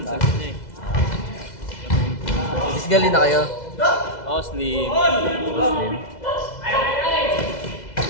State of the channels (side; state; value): right; late; 2.0 ms